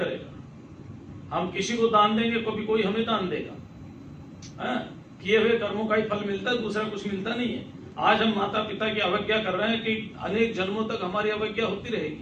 हम किसी को दान देंगे कोई हमें दान देगा। किए हुए कर्मों का ही फल मिलता है, दूसरा कुछ मिलता नहीं है। आज हम माता पिता की अवज्ञा कर रहे हैं कि अनेक जन्मों तक हमारी अवज्ञा होती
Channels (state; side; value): identical; both; correlation 1.00